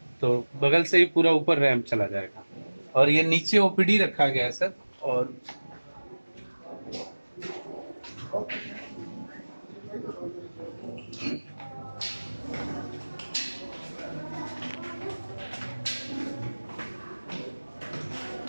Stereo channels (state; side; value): inverted; both; correlation -1.00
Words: तो बगल से ही पूरा ऊपर रैंप चला जाएगा। और ये नीचे OPD रखा गया है सर। और